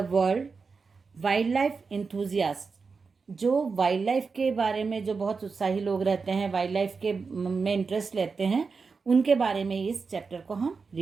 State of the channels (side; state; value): left; quieter; 4.8 dB